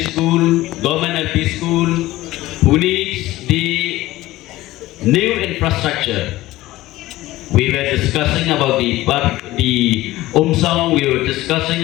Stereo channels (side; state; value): right; quieter; 17.1 dB